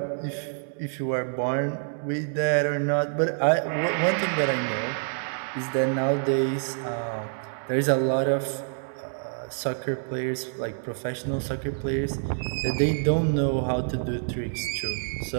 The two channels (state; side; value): silent; left; digital silence